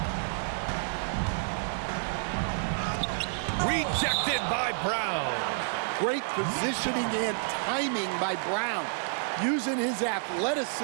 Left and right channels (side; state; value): left; silent; digital silence